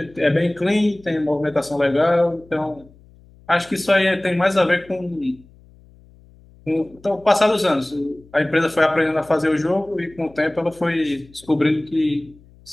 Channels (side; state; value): left; noise; hum, 26 dB below the sound